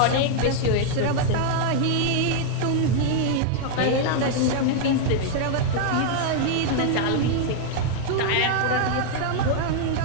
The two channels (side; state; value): both; different; correlation 0.00